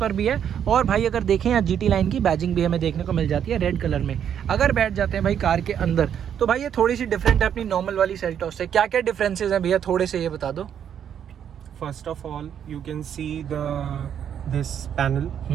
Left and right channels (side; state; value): left; quieter; 8.9 dB